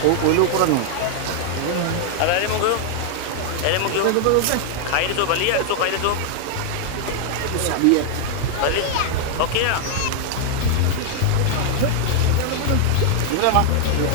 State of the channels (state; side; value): different; both; correlation 0.00